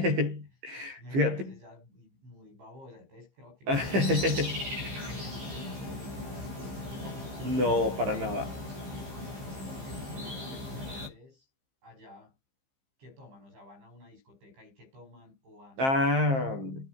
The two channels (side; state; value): left; late; 15 ms